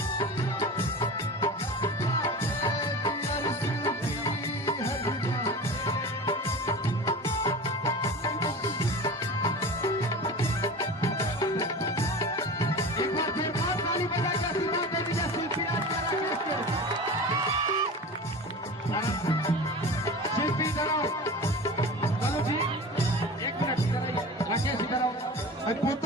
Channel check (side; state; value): both; normal; correlation 0.33